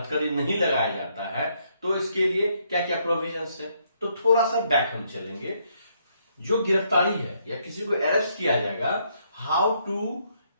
नहीं लगाया जाता है तो इसके लिए क्या क्या प्रोविजंस है। तो थोड़ा सा बैक हम चलेंगे। जो गिरफ्तारी है या किसी को अरेस्ट किया जाएगा, how to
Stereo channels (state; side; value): inverted; both; correlation -0.72